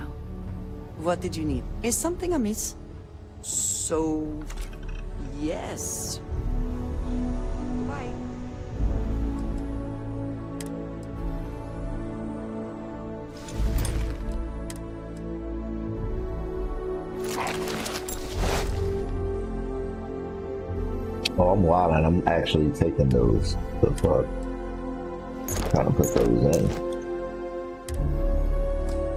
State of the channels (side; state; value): both; identical; correlation 1.00